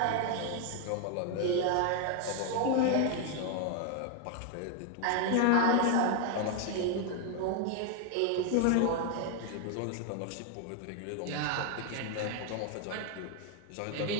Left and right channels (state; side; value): different; both; correlation 0.00